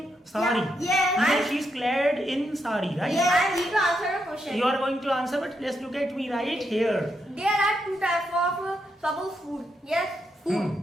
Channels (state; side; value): normal; both; correlation 0.81